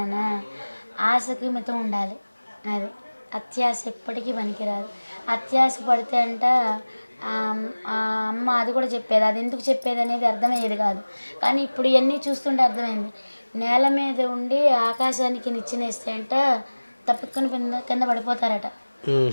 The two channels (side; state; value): both; inverted; correlation -1.00